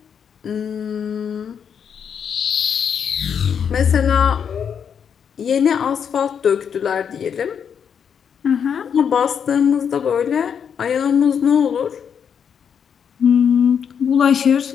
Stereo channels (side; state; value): right; quieter; 7.5 dB